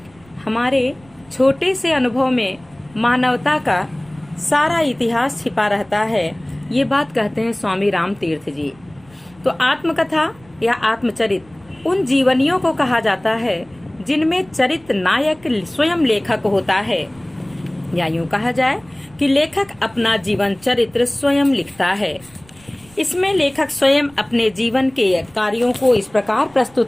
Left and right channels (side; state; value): right; noise; rumble, 27 dB below the sound